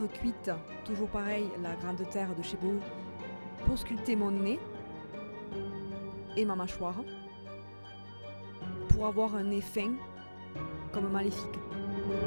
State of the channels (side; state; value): both; inverted; correlation -1.00